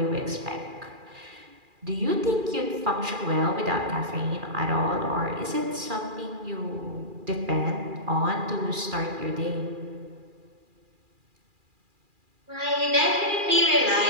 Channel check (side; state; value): left; late; 2.4 ms